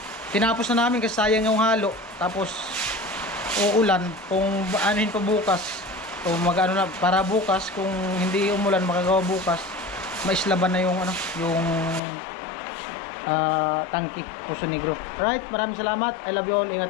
tinapos na namin kasi sayang yung halo. Tapos uulan, kung anuhin pa bukas o magano na para bukas, kung hindi umulan makagawa bukas, maislaban na yung ano, yung tangki Poso Negro. Right, maraming salamat. I love you all. Ingat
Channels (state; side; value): drops out; right; at 12.0 s